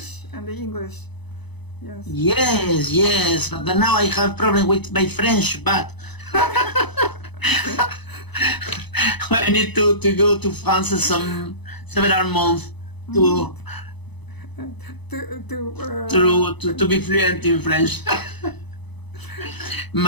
and the English. Yes. Yes, yes. But now I have problem with my French, but Okay. I need to go to France some several months Mm. to to be To fluent in French.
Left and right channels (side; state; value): right; late; 0.99 ms